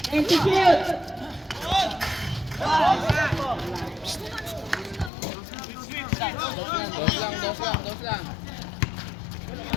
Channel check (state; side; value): drops out; right; at 5.1 s